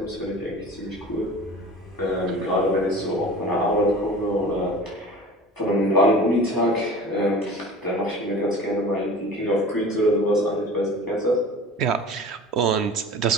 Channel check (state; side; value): normal; both; correlation 0.40